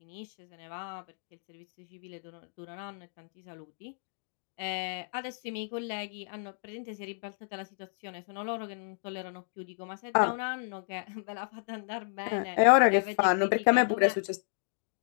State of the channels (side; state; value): right; silent; digital silence